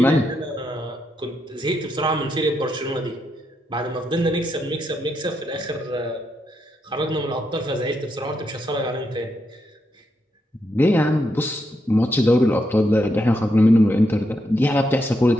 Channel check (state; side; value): normal; both; correlation 0.81